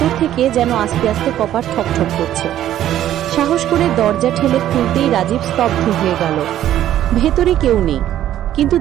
থেকে যেন আস্তে আস্তে কপাট ঠকঠক করছে। সাহস করে দরজা ঠেলে খুলতেই রাজীব স্তব্ধ হয়ে গেল। ভেতরে কেউ নেই, কিন্তু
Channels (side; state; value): left; quieter; 12.1 dB